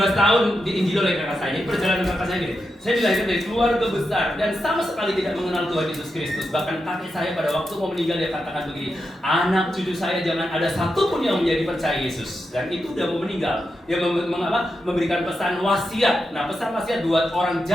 tahun diinjil oleh kakak saya. Jadi perjalanan kakak saya gini. Saya dilahirkan dari keluarga besar dan sama sekali tidak mengenal Tuhan Yesus Kristus. Bahkan kakek saya pada waktu mau meninggal dia katakan begini, anak cucu saya jangan ada satupun yang menjadi percaya Yesus. Dan itu udah mau meninggal. Dia memberikan pesan wasiat. Nah pesan wasiat buat orang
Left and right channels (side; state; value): both; normal; correlation 0.87